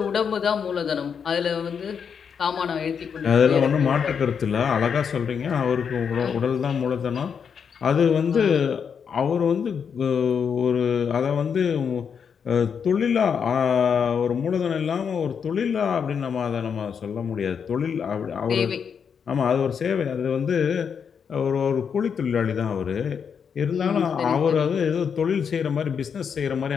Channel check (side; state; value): right; quieter; 6.9 dB